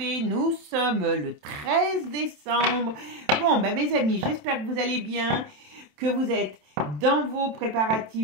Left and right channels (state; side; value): late; left; 27 ms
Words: Nous sommes le 13 décembre. Bon, mes amis, j'espère que vous allez bien, que vous êtes dans vos